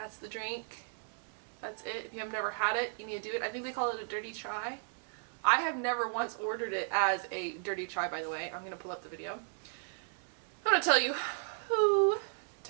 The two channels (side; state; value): left; silent; 54 dB below the other